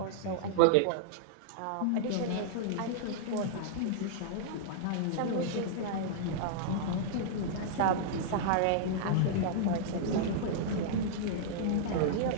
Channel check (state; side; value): different; both; correlation -0.02